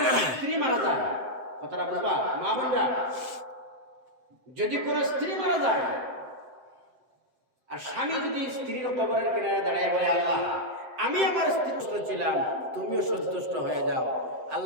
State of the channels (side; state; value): left; late; 7.8 ms